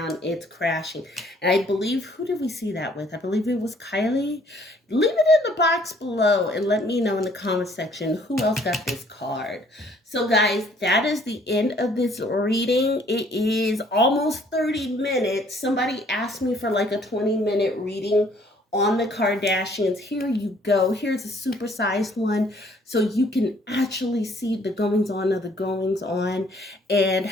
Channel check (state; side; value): normal; both; correlation 0.61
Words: It's crashing. And I believe, who did we see that with? I believe it was Kylie. Leave it in the box below and let me know in the comment section who else got this card. So guys, that is the end of this reading. It is almost 30 minutes. Somebody asked me for like a 20-minute reading on the Kardashians. Here you go. Here's a supersized one so you can actually see the goings on of the goings on and